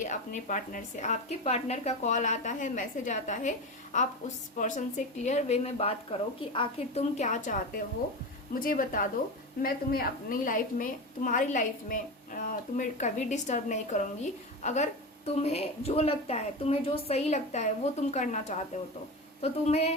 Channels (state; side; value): normal; both; correlation 0.23